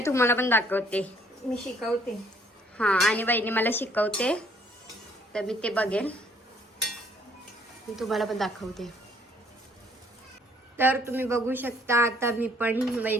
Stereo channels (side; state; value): both; normal; correlation 0.63